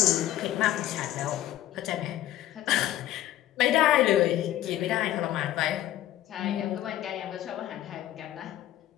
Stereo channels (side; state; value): right; quieter; 13.4 dB